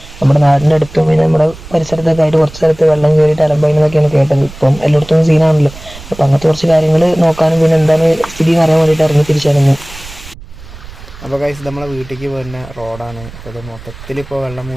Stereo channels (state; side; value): noise; right; rumble, 17 dB below the sound